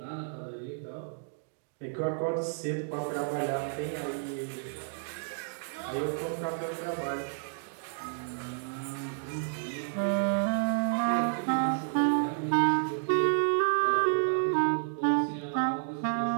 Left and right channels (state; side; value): silent; left; digital silence